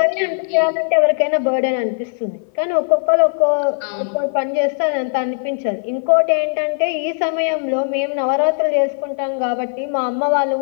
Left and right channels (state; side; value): silent; right; 57 dB below the other